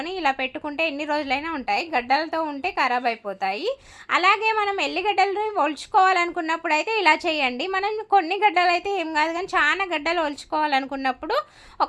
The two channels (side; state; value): both; identical; correlation 1.00